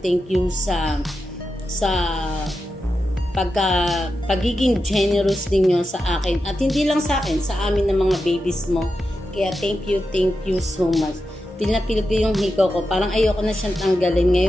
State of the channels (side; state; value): both; normal; correlation 0.89